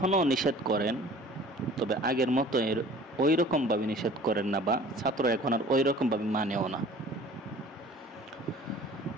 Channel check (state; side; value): normal; both; correlation 0.47